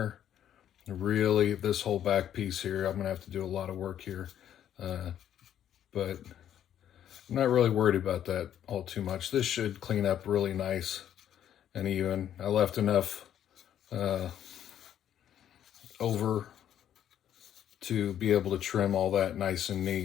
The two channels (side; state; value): right; quieter; 10.4 dB